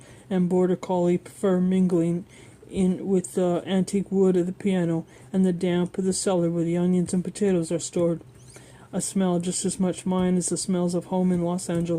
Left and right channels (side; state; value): both; identical; correlation 1.00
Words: and border collie fur mingling in with the antique wood of the piano and the damp of the cellar where the onions and potatoes are stored. A smell just as much mine as the smells of home in Los